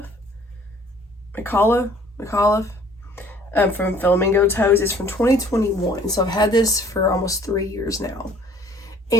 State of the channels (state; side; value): normal; both; correlation 0.56